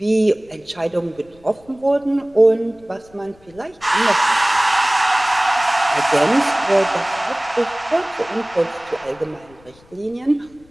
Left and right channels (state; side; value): noise; left; rumble, 28 dB below the sound